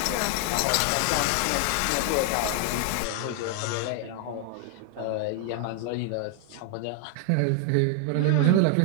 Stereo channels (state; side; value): different; both; correlation 0.00